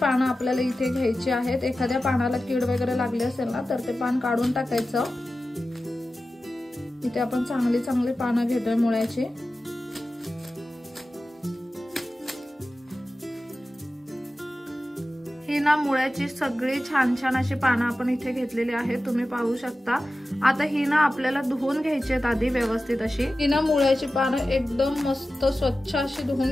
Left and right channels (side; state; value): both; normal; correlation 0.94